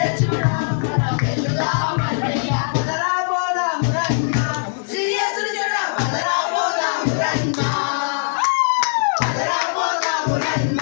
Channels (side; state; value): right; silent; digital silence